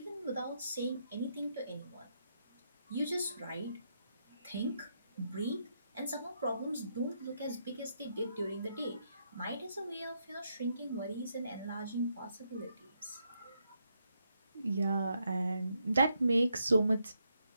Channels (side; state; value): both; inverted; correlation -0.79